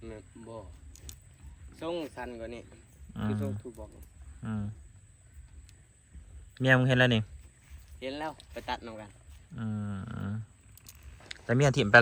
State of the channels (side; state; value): both; identical; correlation 1.00